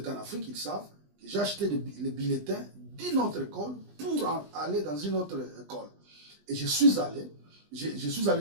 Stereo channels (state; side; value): late; left; 20 ms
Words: en Afrique, ils savent que j'ai acheté les bulletins d'une autre école pour aller dans une autre école. Et je suis allé